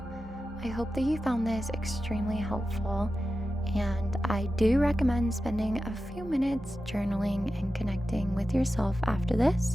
I hope that you found this extremely helpful, and I do recommend spending a few minutes journaling and connecting with yourself after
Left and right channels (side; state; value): both; normal; correlation 0.92